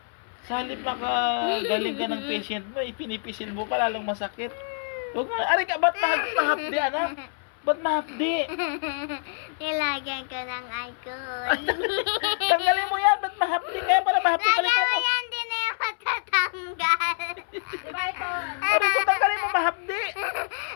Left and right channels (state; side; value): silent; right; 61 dB below the other